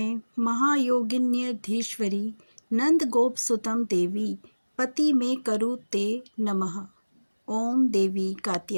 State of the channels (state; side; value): inverted; both; correlation -1.00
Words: महायोगिन्यधीश्वरी नंद गोप सुतम देवी पति में करु ते नमः। ओम देवी